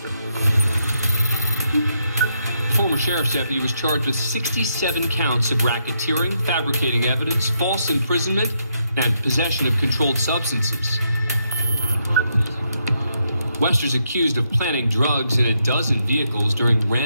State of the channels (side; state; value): both; inverted; correlation -0.79